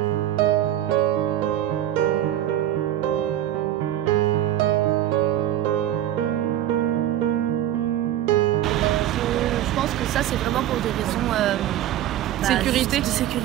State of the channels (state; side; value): quieter; left; 12.4 dB